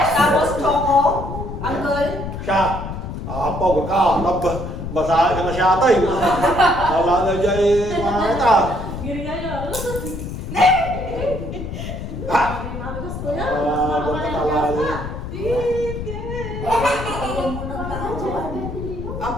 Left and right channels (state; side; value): noise; left; rumble, 7 dB below the sound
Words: choco. Uncle. Siya. Pagod ka. Basahin ka na siya ata eh. Wala na dyan eh. Mga kita. Giri kayo. Ha? Mami gusto yan. Ba't ka talali?